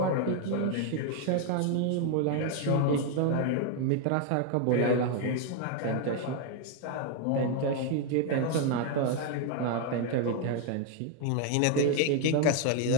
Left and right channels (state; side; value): different; both; correlation 0.01